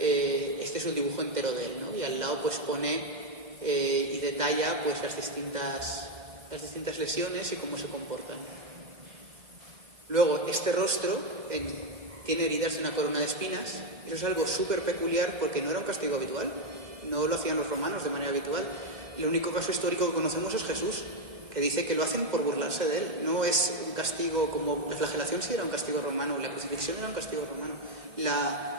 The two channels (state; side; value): late; left; 2.1 ms